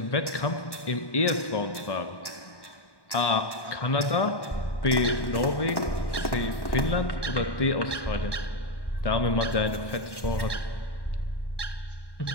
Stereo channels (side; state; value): right; late; 1.1 ms